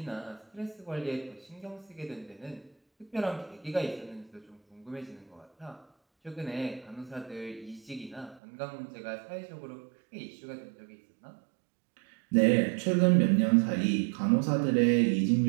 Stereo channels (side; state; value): left; drops out; at 8.4 s